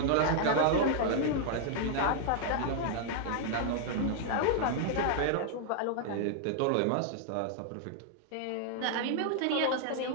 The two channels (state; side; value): different; both; correlation -0.01